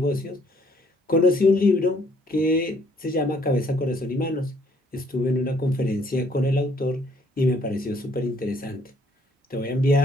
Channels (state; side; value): normal; both; correlation 0.64